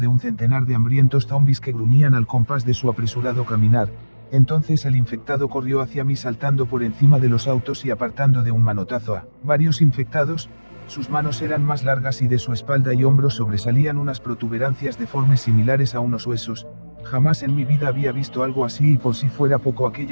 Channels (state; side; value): inverted; both; correlation -1.00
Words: un centenar de hambrientos zombis que gruñían al compás de su apresurado caminar. Entonces el infectado corrió hacia mí saltando por encima de los autos y apartando de un manotazo a varios infectados. Sus manos eran más largas y de su espalda y hombros sobresalían unas protuberancias deformes similares a unos huesos. Jamás en mi vida había visto algo así, y por si fuera poco,